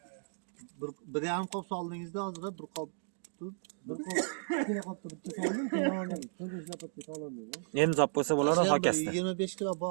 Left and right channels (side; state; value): left; silent; digital silence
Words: Bir yarım kop soldingizda hozir bir kop ikkina qopda bitta soldim, keyin 4-5 lapatga so'landim. Endi zop bo'lsa bo'ladi hokasda. 25 kilo